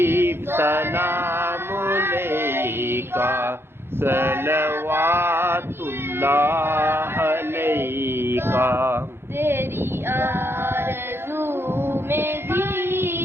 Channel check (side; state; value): left; late; 0.11 ms